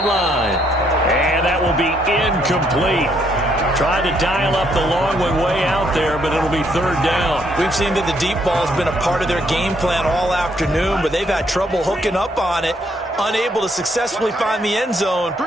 And that will be incomplete. Tried to dial up the long one way out there, but it'll be 3rd down. We've seen that the deep ball has been a part of their game plan all afternoon, but they've had trouble hooking up on it, unable to successfully find the end zone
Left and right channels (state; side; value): normal; both; correlation 0.71